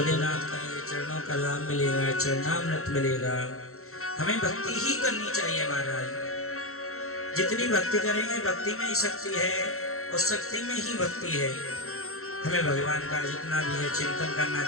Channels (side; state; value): right; late; 0.63 ms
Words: का ये चरणों का लाभ मिलेगा, चरणामृत मिलेगा। हमें भक्ति ही करनी चाहिए महाराज। जितनी भक्ति करेंगे भक्ति में ही शक्ति है, और शक्ति में ही भक्ति है। हमें भगवान का जितना भी है चिंतन करना